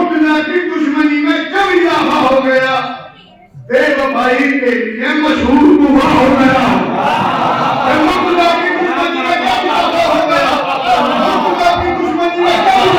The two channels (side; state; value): both; identical; correlation 1.00